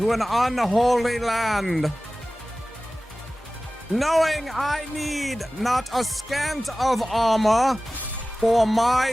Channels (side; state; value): both; normal; correlation 0.97